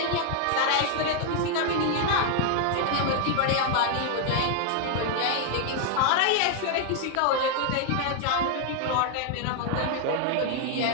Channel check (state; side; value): different; both; correlation 0.00